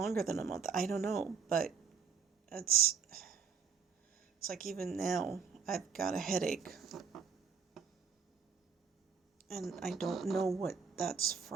than a month. I don't know, but it's like even now I've got a headache. And I don't know what that's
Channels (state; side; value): quieter; left; 6.0 dB